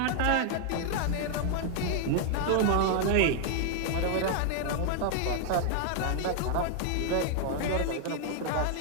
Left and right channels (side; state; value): both; different; correlation 0.00